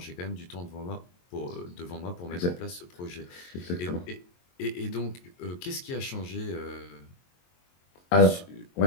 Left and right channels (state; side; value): late; right; 22 ms